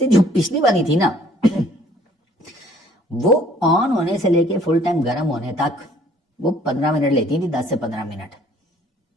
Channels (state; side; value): normal; both; correlation 0.58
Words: जो पिछली वाली थी ना वो ऑन होने से लेके फुल टाइम गर्म होने तक वो 15 मिनट लेती थी, 10 से 15 मिनट।